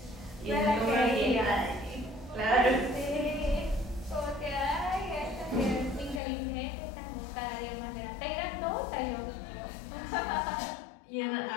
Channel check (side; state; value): right; drops out; at 6.2 s